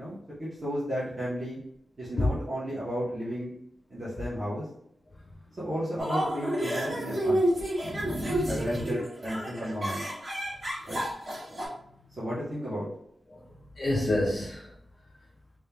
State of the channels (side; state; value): both; normal; correlation 0.89